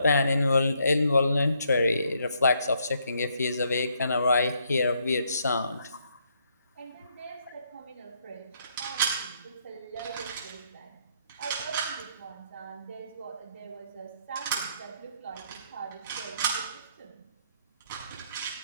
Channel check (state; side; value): inverted; both; correlation -0.73